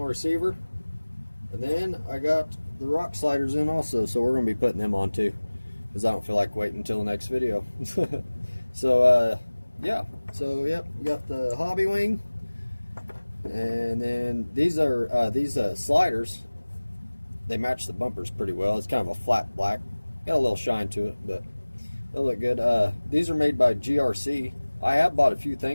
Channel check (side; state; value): both; inverted; correlation -1.00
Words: receiver. And then I got the rock sliders in also, so we're going to be putting them on too, because I don't feel like waiting until the next video. So yeah, so yep, we got the Hobbywing, and then these are sliders. They match the bumpers pretty well. It's kind of a flat black, got a little shine to it, but they look good. These are made by GRC. I have bought a few